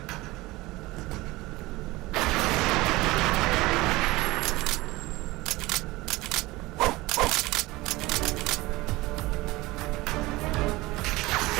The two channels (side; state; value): left; quieter; 20.4 dB